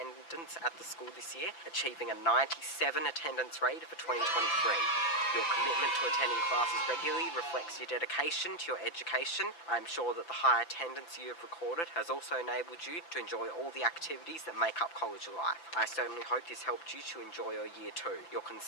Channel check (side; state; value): right; late; 5.9 ms